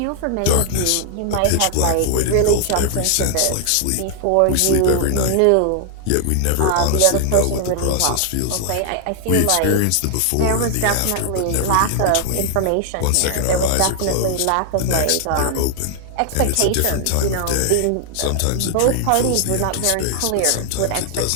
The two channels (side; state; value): both; different; correlation 0.00